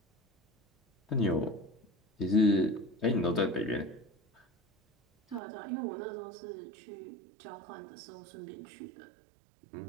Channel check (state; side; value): drops out; left; at 5.4 s